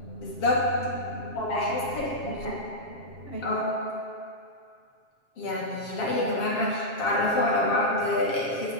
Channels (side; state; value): right; late; 7.4 ms